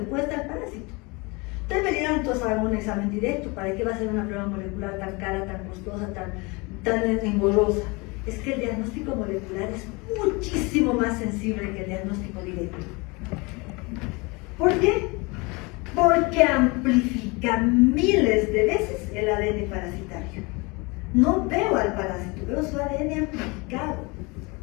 puede estar el parásito. Ustedes me dirán, entonces hago un examen directo, ¿para qué va a ser una prueba molecular tan cara, tan costosa, tan engorrosa? Es que el diagnóstico molecular es muchísimo más sensible que el diagnóstico directo. ¿Por qué? Porque amplifica miles de veces el ADN parasitario. No veo al parásito, veo su ADN amplificado.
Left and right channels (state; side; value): quieter; right; 26.9 dB